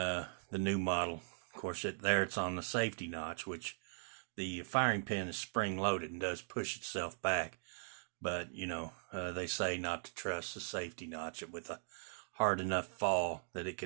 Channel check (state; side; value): silent; left; digital silence